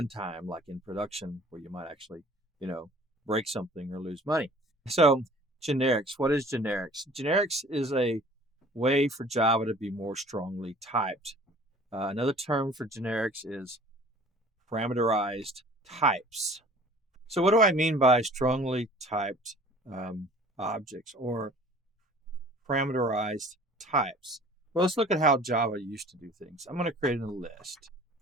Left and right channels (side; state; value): both; normal; correlation 0.49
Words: like in production, where you might actually, break something or lose money. So generics, what is generics? Generics is a way for Java to be more strongly typed. Another term for generics is parameterized types. So what do I mean by strongly typed objects or parameterized types? Well, let's look at how Java used to do things. I'm going to create a list.